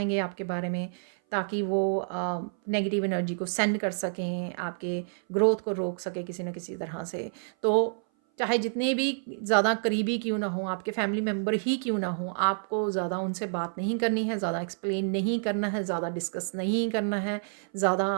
आपके बारे में, ताकि वो नेगेटिव एनर्जी को सेंड कर सकें, आपके ग्रोथ को रोक सकें किसी न किसी तरह से। तो चाहे जितने भी ज़्यादा करीबी क्यों ना हों, आपके फैमिली मेंबर ही क्यों ना हों, आपको ज़्यादा उनसे बात नहीं करनी है, ज़्यादा एक्सप्लेन नहीं करना है, ज़्यादा डिस्कस नहीं करना है, ज़्यादा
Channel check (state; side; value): silent; left; 57 dB below the other